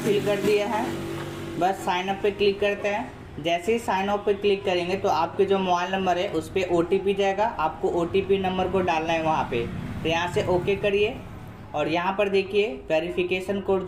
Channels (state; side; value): identical; both; correlation 1.00